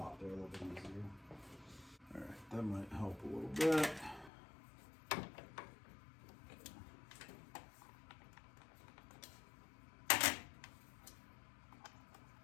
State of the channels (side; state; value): right; drops out; at 4.3 s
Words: there a little bit easier. All right, that might help a little bit.